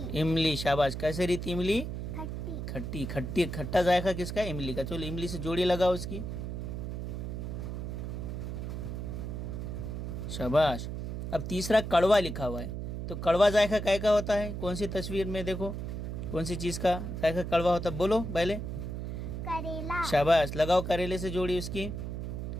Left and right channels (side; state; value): right; noise; hum, 5 dB below the sound